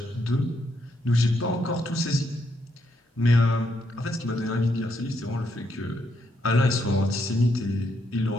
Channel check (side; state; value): both; normal; correlation 0.77